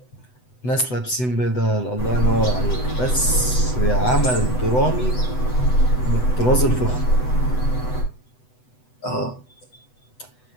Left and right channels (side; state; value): right; late; 8.0 ms